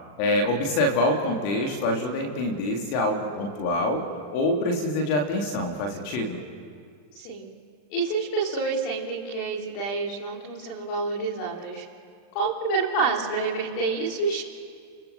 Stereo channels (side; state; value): right; late; 40 ms